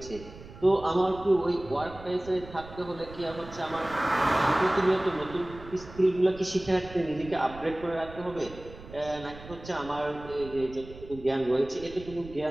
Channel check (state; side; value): noise; right; rumble, 16 dB below the sound